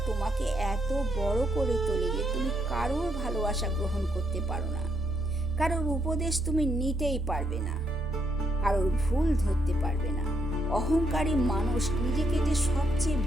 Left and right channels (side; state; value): both; normal; correlation 0.76